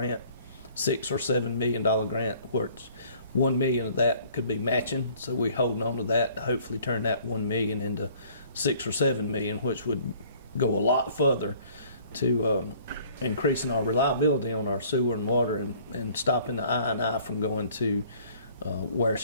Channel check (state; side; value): inverted; both; correlation -0.55